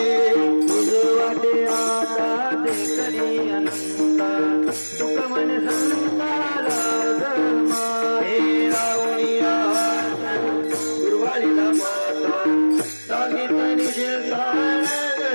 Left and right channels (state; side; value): inverted; both; correlation -1.00